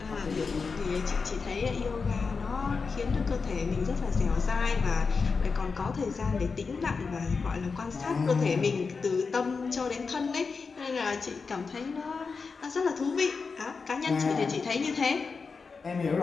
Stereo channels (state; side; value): quieter; right; 4.8 dB